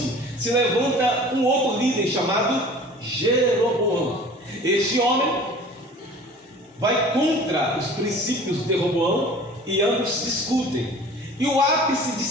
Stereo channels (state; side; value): normal; both; correlation 0.44